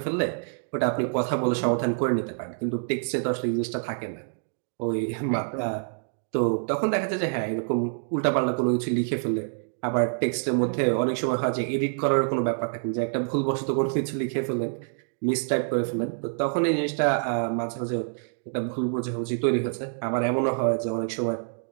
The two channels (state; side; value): silent; left; digital silence